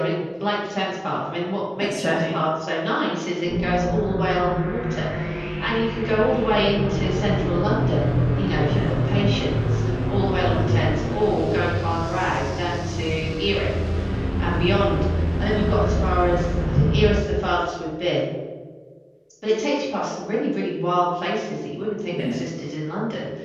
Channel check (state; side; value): identical; both; correlation 1.00